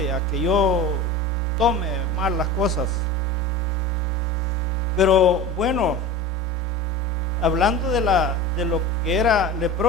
a que yo tome mal las cosas. Pero bueno, hablando de lo que era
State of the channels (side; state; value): both; normal; correlation 0.33